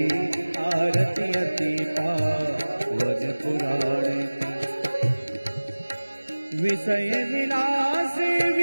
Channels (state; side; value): inverted; both; correlation -1.00